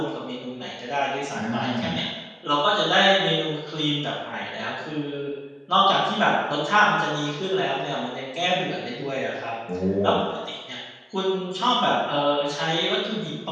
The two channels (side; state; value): both; identical; correlation 1.00